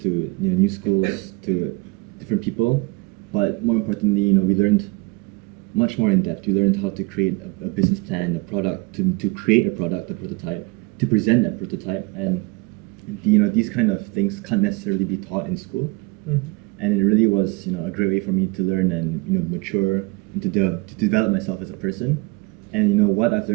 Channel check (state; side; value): quieter; left; 26.6 dB